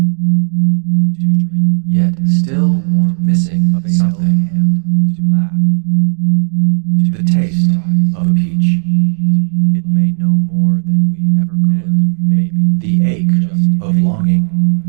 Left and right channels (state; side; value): silent; left; 70 dB below the other